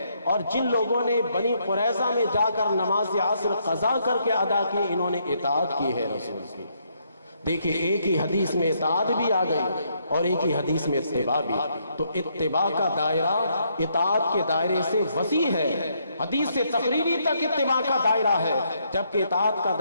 اور جن لوگوں نے بنی قریظہ میں جا کر نماز عصر قضا کر کے ادا کی، انہوں نے اطاعت کی ہے رسول کی۔ دیکھیں، ایک ہی حدیث میں اطاعت بھی آ گئی اور ایک ہی حدیث میں اتباع بھی، تو اتباع کا دائرہ اطاعت کے دائرے سے وسیع ہے، حدیث سے تقریری تک اتباع کا دائرہ ہے، جبکہ اطاعت کا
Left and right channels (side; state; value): both; inverted; correlation -0.74